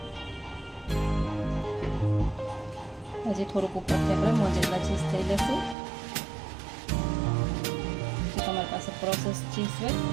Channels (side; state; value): left; drops out; at 5.8 s